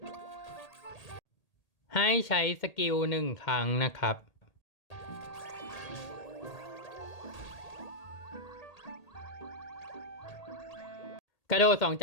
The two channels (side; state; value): right; late; 1.8 ms